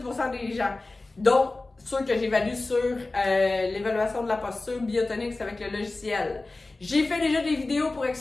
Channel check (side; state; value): right; quieter; 3.2 dB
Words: des gens. Donc, ceux que j'évalue sur l'évaluation de la posture Biotonix avec le logiciel. J'ai fait déjà des vidéos pour